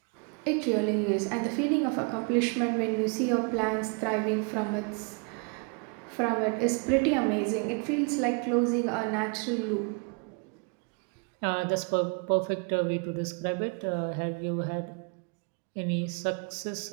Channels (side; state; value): left; quieter; 35.4 dB